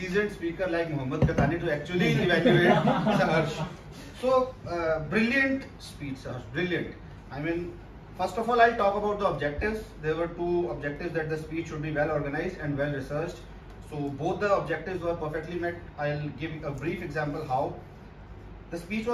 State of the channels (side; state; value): both; identical; correlation 1.00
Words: speaker like Mohammad Katani to actually evaluate Saharsh. So brilliant speech, Saharsh, brilliant. I mean, first of all, I'll talk about the objectives. There were two objectives, that the speech should be well organized and well researched. So both the objectives were perfectly met. I'll give a brief example how. The speech